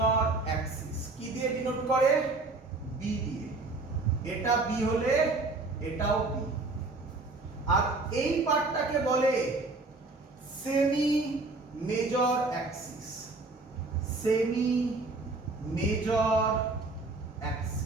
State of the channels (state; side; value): quieter; left; 3.4 dB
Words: কি দিয়ে ডিনোট করে? বি দিয়ে। এটা বি হলে এটাও বি। আর এই পার্টটাকে বলে সেমি মেজর অ্যাক্সিস।